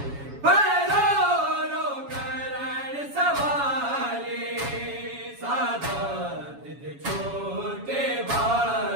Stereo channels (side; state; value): left; late; 7.2 ms